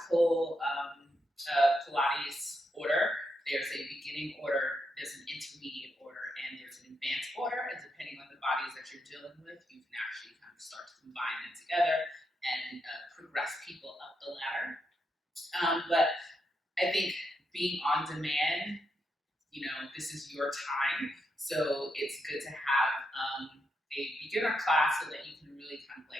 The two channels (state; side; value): normal; both; correlation 0.82